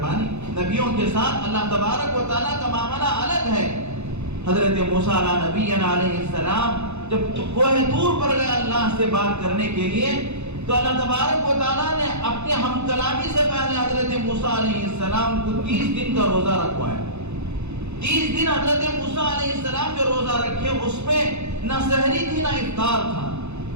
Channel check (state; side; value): late; left; 0.81 ms